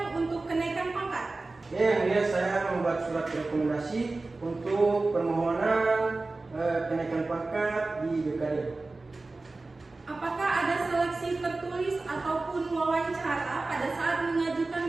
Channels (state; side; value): quieter; left; 3.4 dB